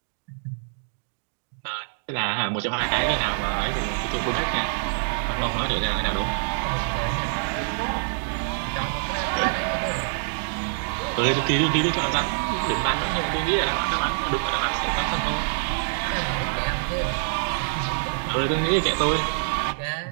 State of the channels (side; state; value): left; silent; digital silence